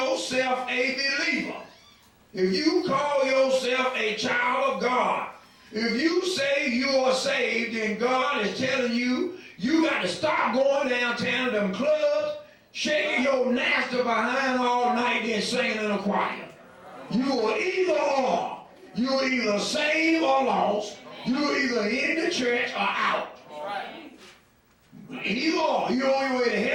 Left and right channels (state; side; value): identical; both; correlation 1.00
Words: a believer, if you call yourself a child of God, if you say you are saved, then God is telling you, you got to stop going downtown to them clubs, shaking your nasty behind all night, then singing in a choir. You are either or. You're either saved or lost. You're either in the church or out. Either or. You're on your way to